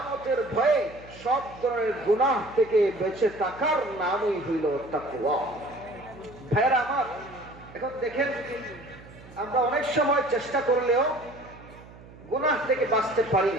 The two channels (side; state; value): right; noise; hum, 20 dB below the sound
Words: ভয়ে, সব ধরনের গুনাহ থেকে বেঁচে থাকার নামই হইল তাকওয়া। ভাইরা আমার, এখন দেখেন, আমরা অনেক সময় চেষ্টা করলেও গুনাহ থেকে বাঁচতে পারি